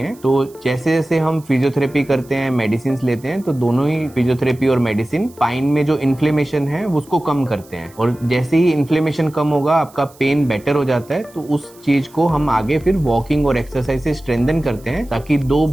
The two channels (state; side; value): noise; right; hiss, 26 dB below the sound